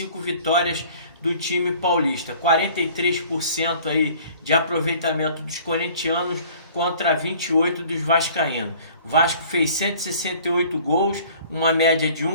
vitórias do time paulista, 43% aí de aproveitamento dos corintianos contra 28 dos vascaínos. O Vasco fez 168 gols, uma média de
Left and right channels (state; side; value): inverted; both; correlation -0.51